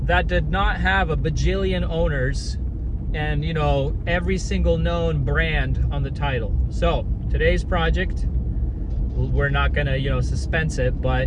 that did not have a bajillion owners and, you know, every single known brand on the title. So today's project, we're not gonna, you know, suspense it, but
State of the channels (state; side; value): identical; both; correlation 1.00